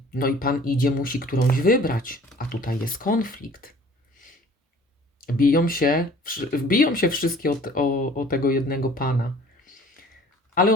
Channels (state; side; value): normal; both; correlation 0.50